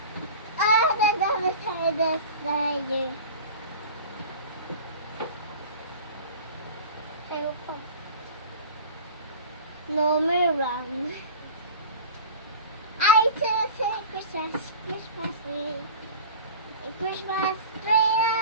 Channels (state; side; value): inverted; both; correlation -0.36